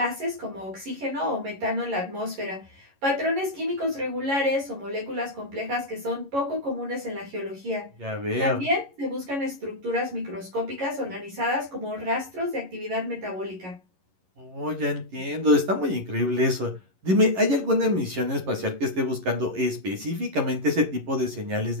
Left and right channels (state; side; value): late; left; 11 ms